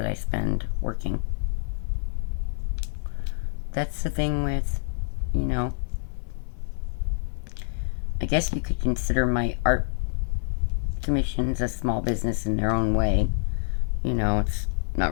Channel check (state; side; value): silent; right; 60 dB below the other